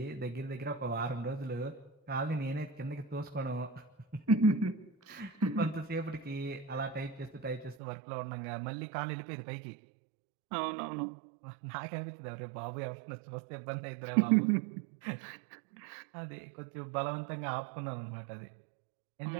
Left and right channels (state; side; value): drops out; left; at 7.8 s